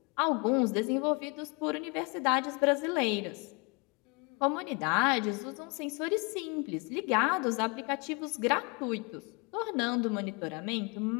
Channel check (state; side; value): quieter; right; 30.7 dB